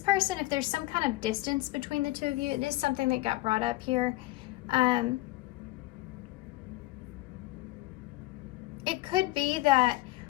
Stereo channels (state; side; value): quieter; right; 18.4 dB